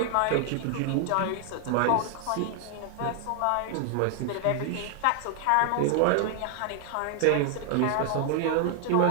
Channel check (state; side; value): different; both; correlation 0.00